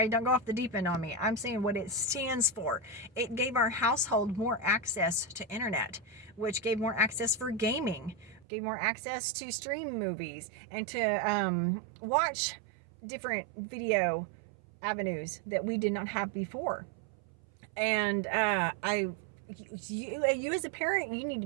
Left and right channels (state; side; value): drops out; left; at 8.5 s